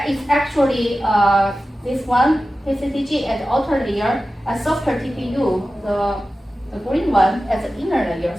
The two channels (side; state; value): both; normal; correlation 0.94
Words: is actually this one, PCTG at the outer layer, a softer TPU, the green one as the inner layer.